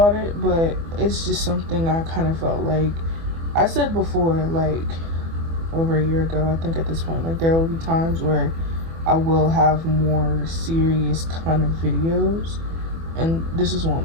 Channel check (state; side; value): late; left; 24 ms